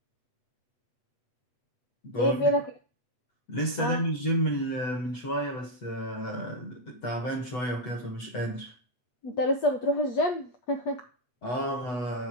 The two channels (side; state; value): right; late; 8.1 ms